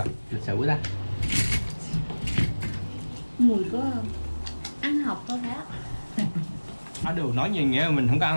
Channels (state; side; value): inverted; both; correlation -1.00